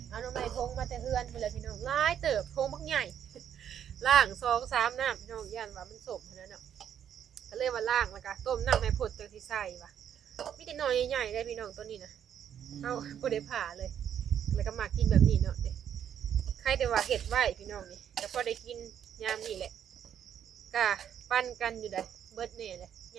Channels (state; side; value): quieter; left; 9.2 dB